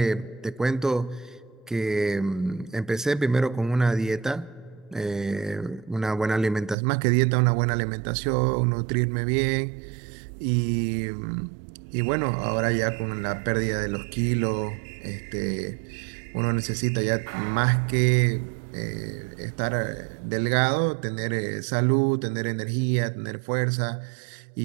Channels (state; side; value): drops out; left; at 6.8 s